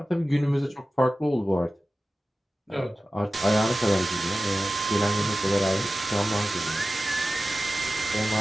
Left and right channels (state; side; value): normal; both; correlation 0.95